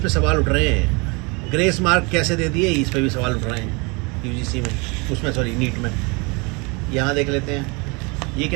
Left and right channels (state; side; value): quieter; left; 29.3 dB